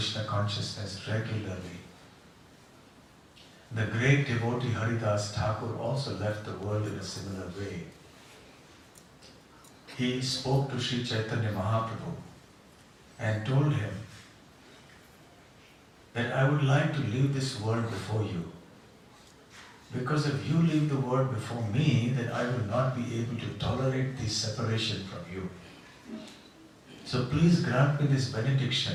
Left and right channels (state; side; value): identical; both; correlation 1.00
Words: consciousness regularly. The great devotee Haridas Thakur also left the world in a similar way. He spoke to Sri Chaitanya Mahaprabhu and told him that I would like to leave this world before you. Because if you leave the world before me, then I will not be able to tolerate this separation from you. So please grant me this